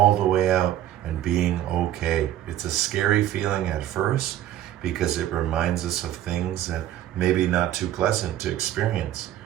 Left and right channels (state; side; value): quieter; left; 12.4 dB